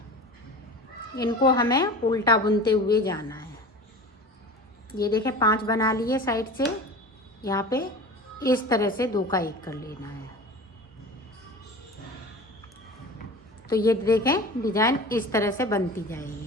इनको हमें उल्टा बुनते हुए जाना है। ये देखें 5 बना लिए साइड से, यहाँ पे इस तरह से 2 का 1 कर लेना है। तो ये देखें डिजाइन इस तरह से बनती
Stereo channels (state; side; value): normal; both; correlation 0.35